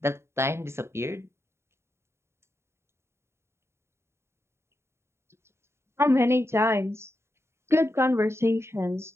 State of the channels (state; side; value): late; left; 0.13 ms